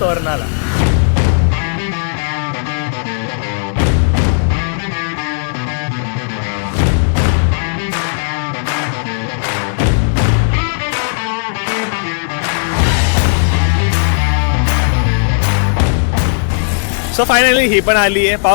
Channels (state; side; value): silent; right; digital silence